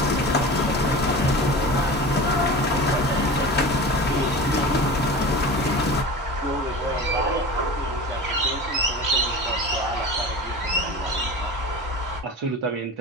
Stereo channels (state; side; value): normal; both; correlation 0.32